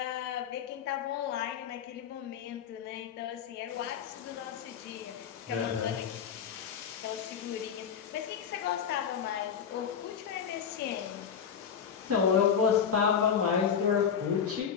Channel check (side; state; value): right; quieter; 7.6 dB